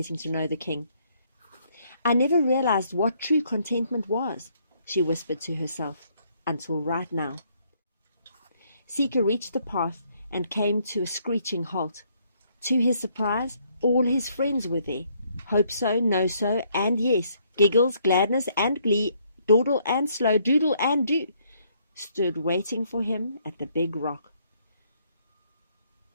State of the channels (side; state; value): both; inverted; correlation -0.69